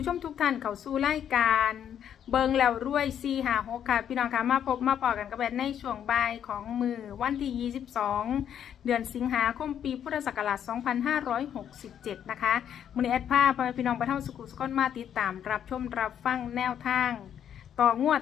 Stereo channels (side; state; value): right; quieter; 9.3 dB